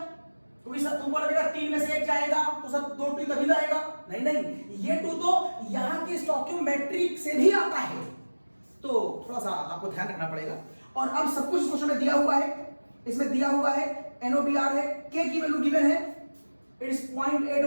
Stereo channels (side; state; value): both; inverted; correlation -1.00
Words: क्योंकि सर तुमको लगेगा 3 में से 1 जाएगा तो सर 2 2 तभी जाएगा। नहीं नहीं, ये 2 तो यहाँ की स्टोइकियोमेट्रिक से भी आता है, तो थोड़ा सा आपको ध्यान रखना पड़ेगा। और अब सब कुछ क्वेश्चन में दिया हुआ है, इसमें दिया हुआ है NOBr है, K की वैल्यू गिवन है, it is